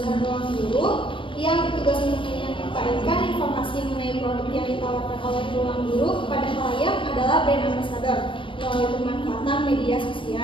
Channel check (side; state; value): right; late; 0.25 ms